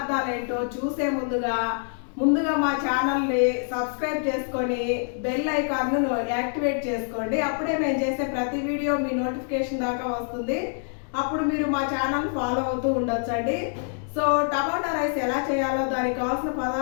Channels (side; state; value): right; silent; digital silence